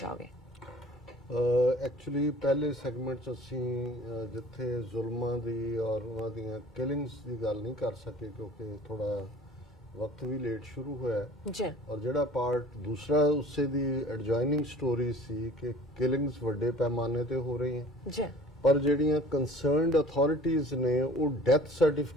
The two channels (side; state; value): both; normal; correlation 0.48